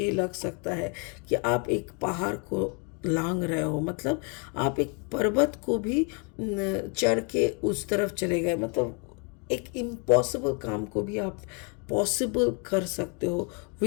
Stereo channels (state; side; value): quieter; right; 35.6 dB